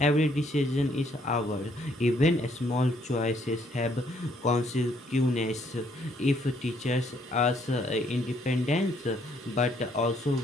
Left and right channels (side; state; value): both; normal; correlation 0.68